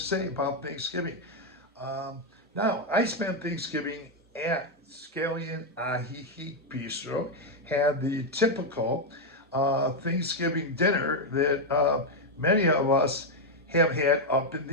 say about Thanksgiving. Um, Now, I spent Thanksgiving at Scallion Ajijic Bistro, had the typical Thanksgiving dinner that many of us have had up in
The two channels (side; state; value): both; normal; correlation 0.01